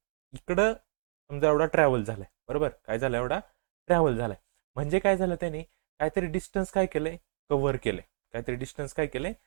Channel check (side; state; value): left; silent; digital silence